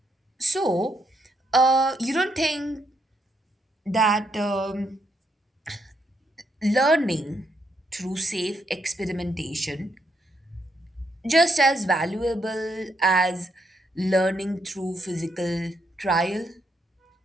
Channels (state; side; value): normal; both; correlation 0.77